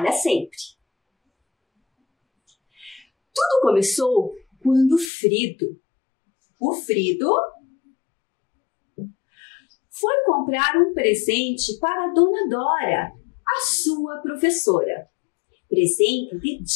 sempre. Tudo começou quando o Frido foi comprar um presente para a Dona Dora, a sua professora. Presente de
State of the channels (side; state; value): right; drops out; at 5.1 s